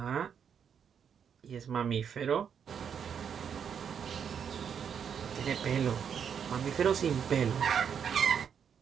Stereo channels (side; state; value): left; quieter; 7.6 dB